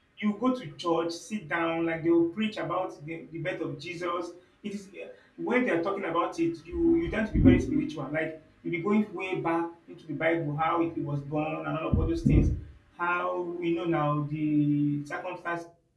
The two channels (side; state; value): both; identical; correlation 1.00